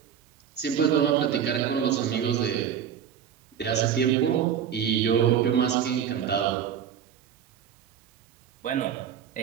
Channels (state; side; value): quieter; left; 8.7 dB